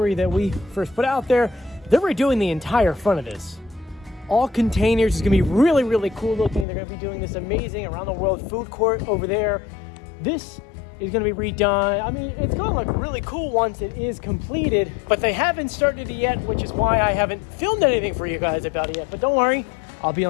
that we first put out there, they were doing the entire front of this. All containers. Is gonna be really, really cool looking. They're gonna be doing this amazing around the world food court over there. This is gonna be redone. I mean, it's gonna look really cool once it is completed, but they haven't started it yet, which is why I haven't filmed anything for you guys about it yet, but don't worry, I'll be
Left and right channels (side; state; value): right; drops out; at 6.7 s